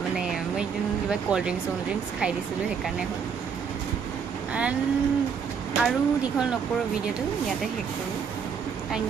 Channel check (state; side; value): quieter; left; 6.5 dB